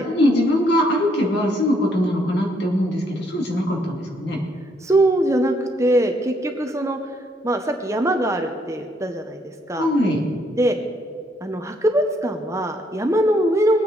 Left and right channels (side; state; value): both; normal; correlation 0.71